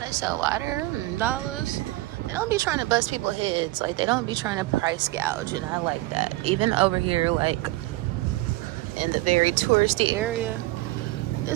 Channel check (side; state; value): left; quieter; 19.0 dB